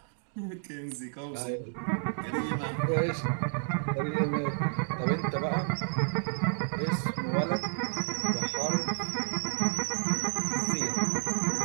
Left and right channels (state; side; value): silent; left; digital silence